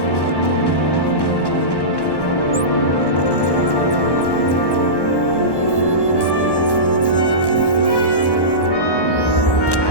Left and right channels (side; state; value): right; late; 1.1 ms